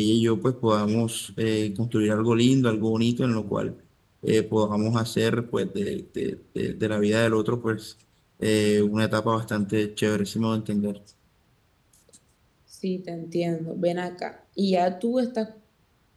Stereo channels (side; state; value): both; identical; correlation 1.00